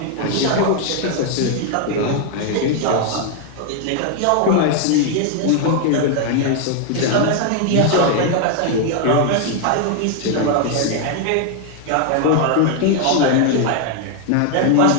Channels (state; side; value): different; both; correlation 0.00